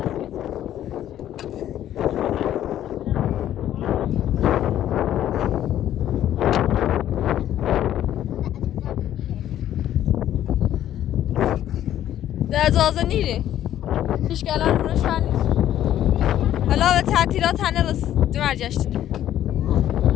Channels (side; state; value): right; quieter; 11.8 dB